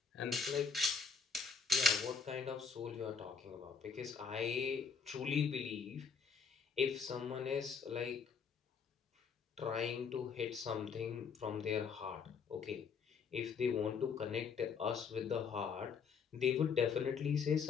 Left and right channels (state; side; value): quieter; right; 5.6 dB